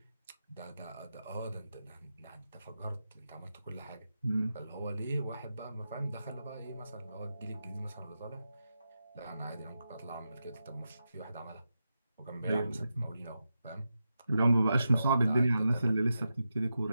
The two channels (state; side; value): inverted; both; correlation -0.89